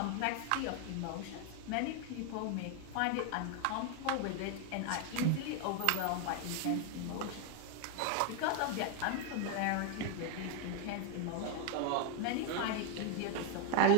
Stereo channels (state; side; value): different; both; correlation 0.01